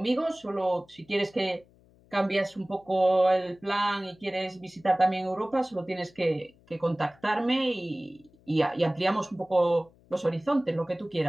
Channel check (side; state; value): left; noise; hum, 29 dB below the sound